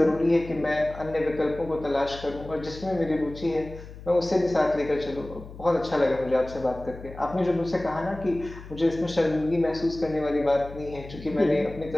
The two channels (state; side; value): noise; left; hum, 15 dB below the sound